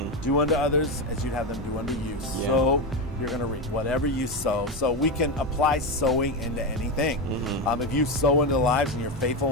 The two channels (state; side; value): normal; both; correlation 0.14